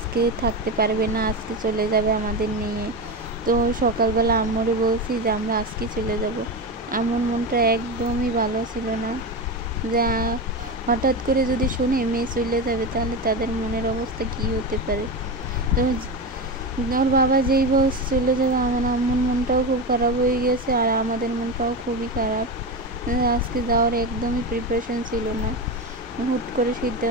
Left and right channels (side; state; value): both; normal; correlation 0.19